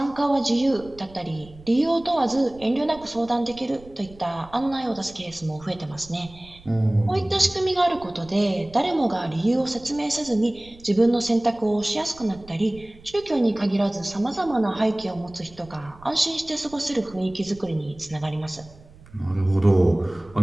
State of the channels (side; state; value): right; noise; rumble, 22 dB below the sound